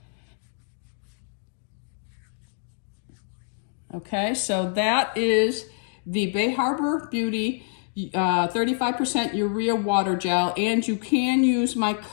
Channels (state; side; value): silent; right; digital silence